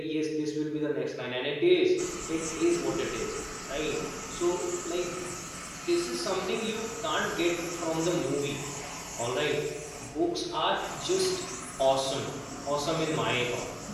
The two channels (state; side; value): identical; both; correlation 1.00